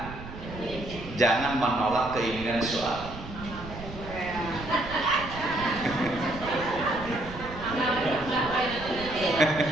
Jangan menolak keinginan suami.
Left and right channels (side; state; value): right; noise; rumble, 12 dB below the sound